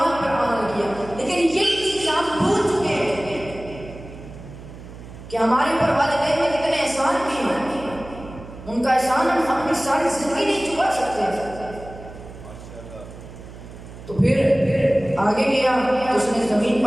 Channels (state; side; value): noise; right; hum, 15 dB below the sound